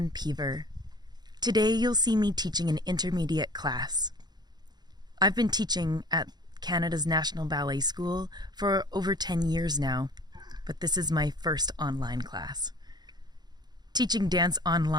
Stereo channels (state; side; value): late; left; 0.20 ms